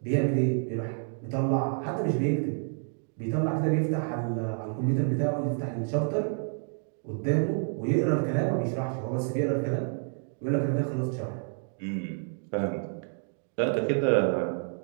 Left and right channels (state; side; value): silent; left; 59 dB below the other